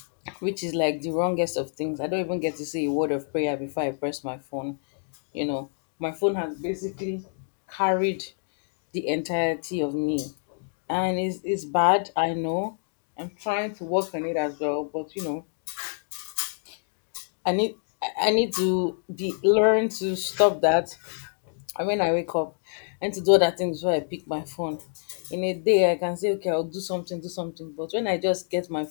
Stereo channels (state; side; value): silent; right; digital silence